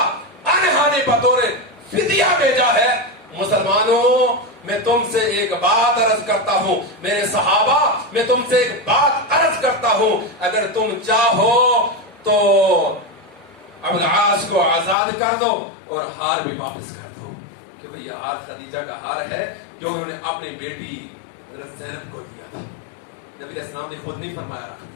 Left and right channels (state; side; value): drops out; right; at 15.0 s